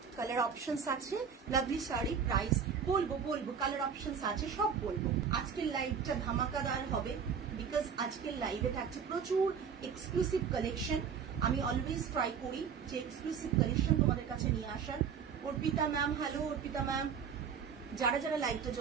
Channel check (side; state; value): left; quieter; 6.9 dB